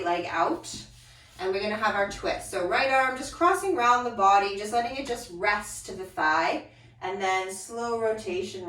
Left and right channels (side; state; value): both; identical; correlation 1.00